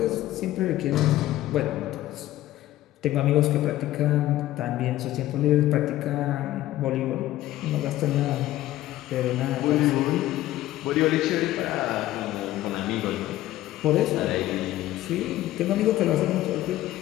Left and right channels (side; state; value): right; quieter; 14.9 dB